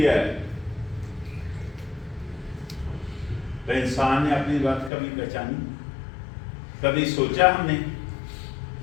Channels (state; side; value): drops out; right; at 4.9 s